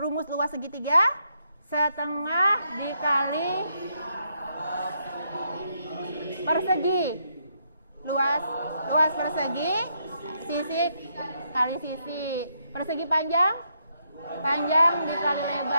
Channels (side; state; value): both; inverted; correlation -0.77